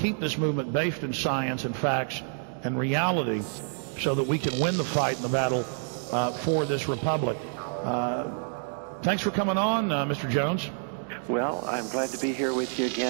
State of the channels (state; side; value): silent; left; digital silence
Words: this movement based in science and facts and reality so that we can win the fight and the battle for this republic? Thanks for coming on, Mr. Jones. Well, I'm glad to be here with you